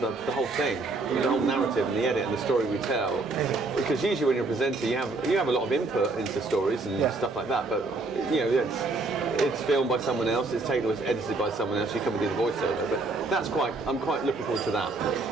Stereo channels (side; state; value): left; quieter; 3.4 dB